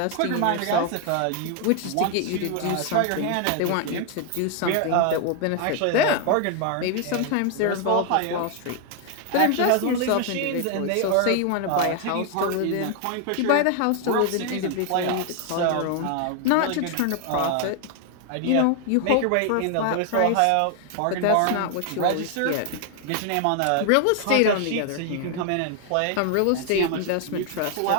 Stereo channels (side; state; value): both; different; correlation 0.00